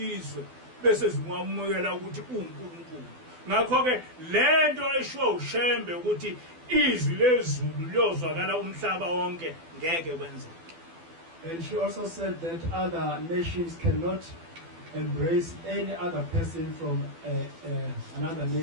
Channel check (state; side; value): late; left; 12 ms